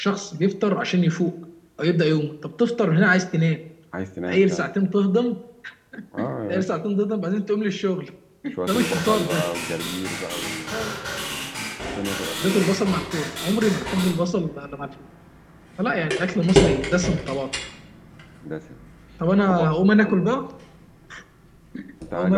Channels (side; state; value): both; identical; correlation 1.00